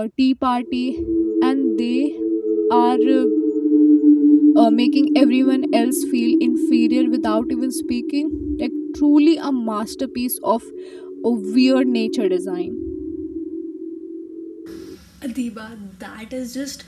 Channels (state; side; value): identical; both; correlation 1.00